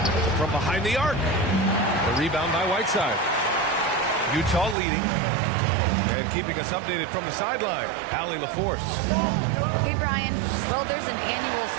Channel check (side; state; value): left; drops out; at 4.8 s